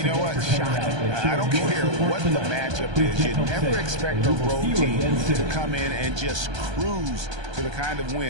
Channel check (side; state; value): left; late; 1.3 ms